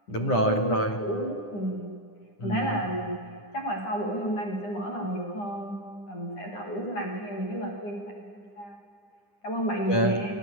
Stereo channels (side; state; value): right; late; 9.9 ms